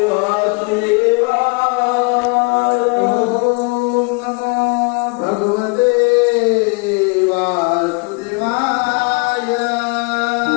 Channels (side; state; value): right; quieter; 31.6 dB